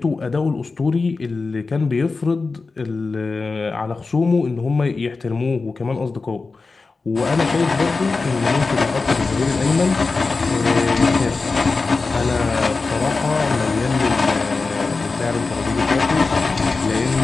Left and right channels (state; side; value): quieter; right; 4.0 dB